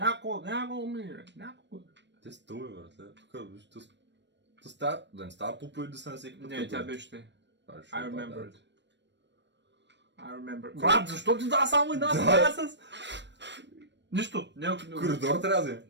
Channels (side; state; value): left; late; 0.52 ms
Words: умире. Някакво. Те стълби, братле. Тук, виж, да не става по-пълни да се на всеки път. Не, тя беше те. I remember it. I remember. Брат, защо ти дава само една стая с... Нищо. Коридор трябва да